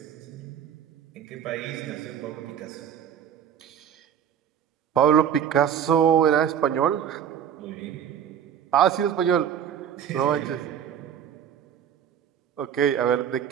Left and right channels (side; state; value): left; quieter; 9.0 dB